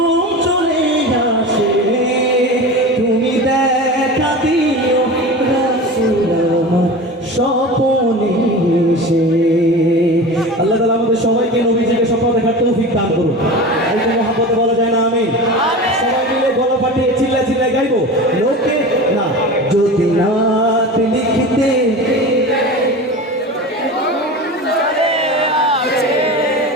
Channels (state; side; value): normal; both; correlation 0.31